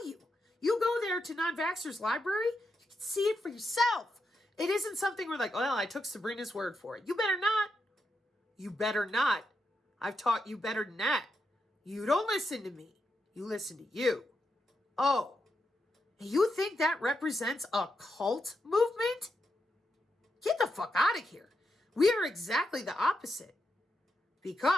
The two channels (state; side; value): normal; both; correlation 0.84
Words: you. You go there to Non-Vaxxer's library, you can see it for yourself. It isn't something we're like, well, I took Sabrina's word for it. You better not. You better not. I've taught you better than that. You don't listen to me. You listen to you. Oh, you think that represents a cult movement? Get the fuck out of here. We are exactly the opposite.